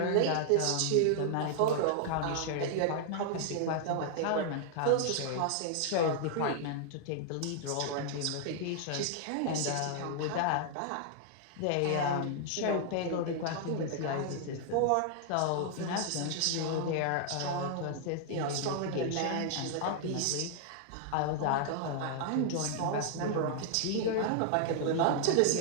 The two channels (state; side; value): different; both; correlation 0.00